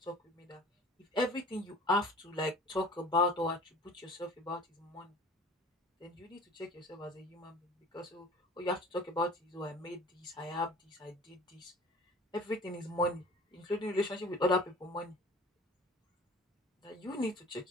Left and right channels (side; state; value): both; normal; correlation 0.44